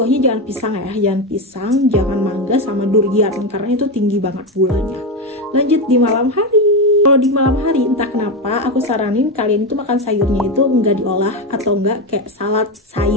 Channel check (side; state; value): both; normal; correlation 0.13